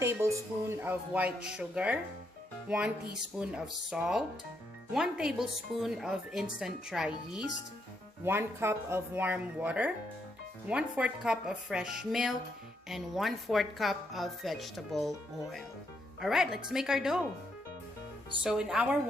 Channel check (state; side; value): normal; both; correlation 0.77